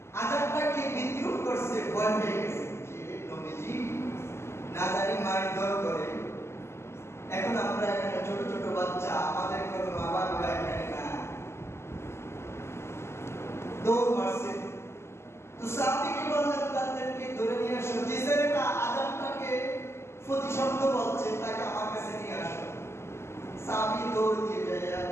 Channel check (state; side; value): late; right; 0.13 ms